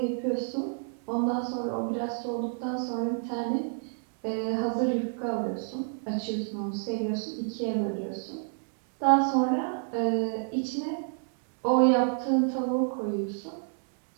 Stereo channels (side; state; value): left; silent; digital silence